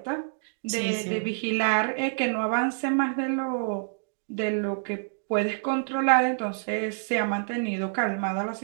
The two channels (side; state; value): left; silent; digital silence